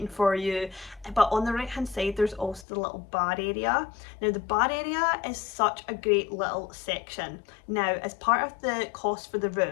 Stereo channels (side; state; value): right; drops out; at 2.7 s